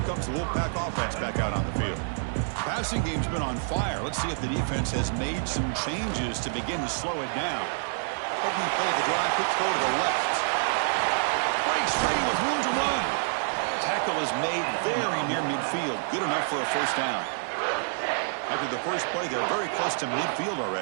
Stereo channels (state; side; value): silent; left; 60 dB below the other